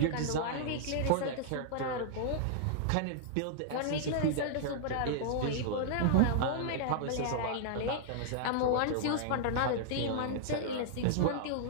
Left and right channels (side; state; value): both; different; correlation -0.01